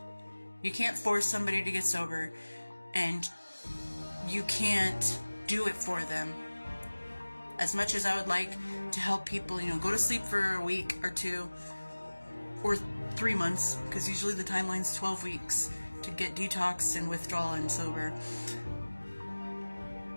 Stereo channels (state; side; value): inverted; both; correlation -1.00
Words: You can't force somebody to get sober, and you can't do it for them. As much as I would like to help people, go to sleep for a week or two, or 3 months, because usually the timeline's 12 weeks to get detox and withdrawal and sober.